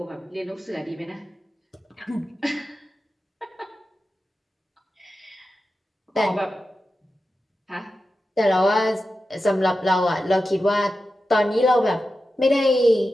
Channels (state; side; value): normal; both; correlation 0.92